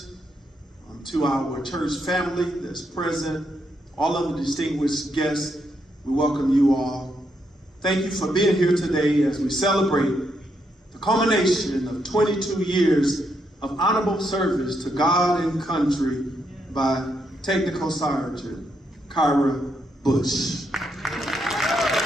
to our church family that's present, all of the distinguished guests, we welcome you all. Thank you for being here today as we celebrate the culmination of 22 years of honorable service to God and country by Technical Sergeant Kyra Bush.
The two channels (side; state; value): both; normal; correlation 0.79